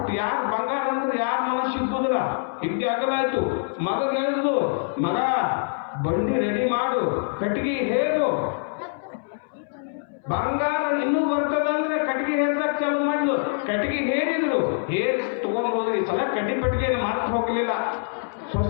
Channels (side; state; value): right; silent; 62 dB below the other